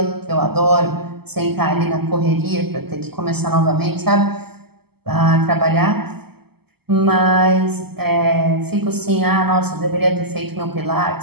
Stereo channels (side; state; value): left; late; 0.96 ms